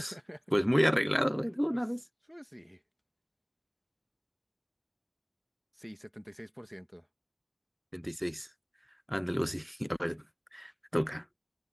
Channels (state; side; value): identical; both; correlation 1.00